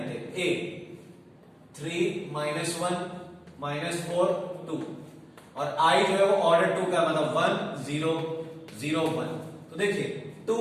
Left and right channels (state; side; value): identical; both; correlation 1.00